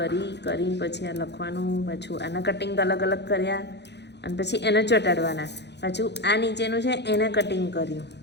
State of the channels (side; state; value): right; late; 0.50 ms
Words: પછી આ લખવાનું. પાછું આના કટિંગ અલગ કર્યા અને પછી એને ચોંટાડવાના. પાછું આ નીચેનું છે એને કટિંગ કર્યું.